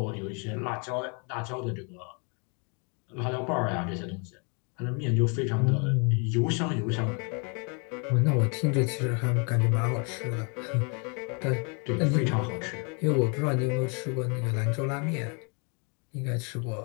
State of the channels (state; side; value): quieter; right; 35.6 dB